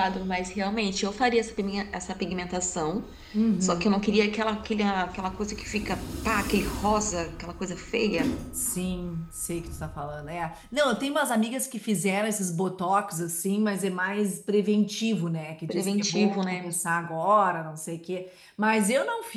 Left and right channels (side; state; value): both; identical; correlation 1.00